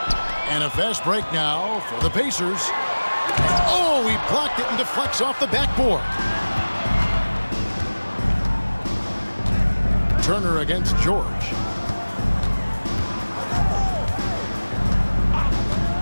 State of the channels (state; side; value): inverted; both; correlation -1.00